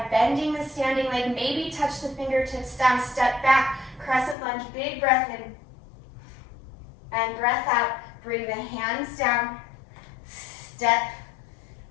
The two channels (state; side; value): drops out; right; at 4.4 s